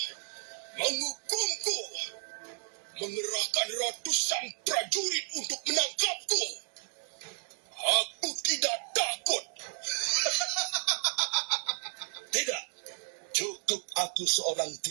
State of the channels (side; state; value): left; silent; 56 dB below the other